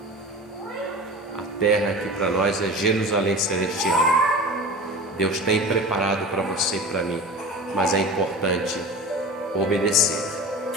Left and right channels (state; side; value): normal; both; correlation 0.33